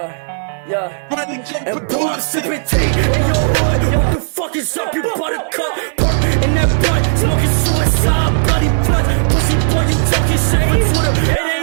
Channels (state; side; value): silent; left; 58 dB below the other